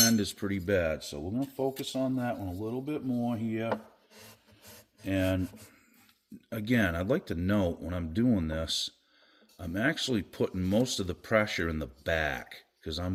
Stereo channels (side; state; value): both; identical; correlation 1.00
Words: is pretty bad. So we're going to focus on that one a little bit more here. And again, I'd like to note when I'm doing this, I'm actually putting most of the pressure in the back because